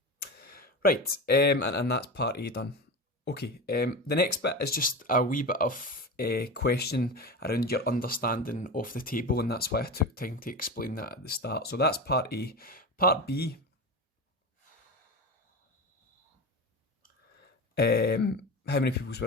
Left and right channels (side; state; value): both; normal; correlation 0.25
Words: right, and that's part A done. Okay, the next bit is just a wee bit of question around your understanding of the table, and that's why I took time to explain that at the start. So that's part A. Part B, how many people